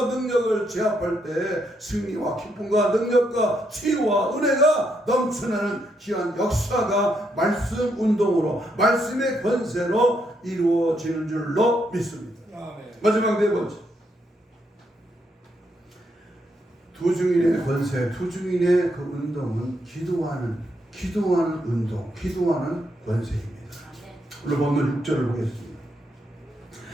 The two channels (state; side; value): normal; both; correlation 0.77